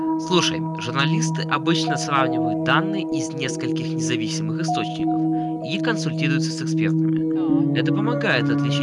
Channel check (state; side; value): identical; both; correlation 1.00